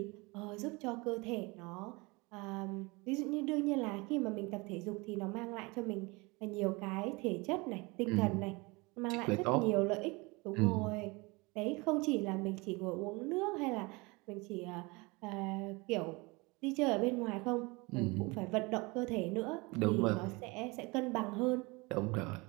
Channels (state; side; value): quieter; left; 25.8 dB